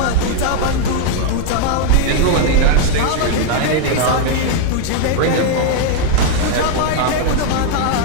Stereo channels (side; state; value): both; different; correlation 0.00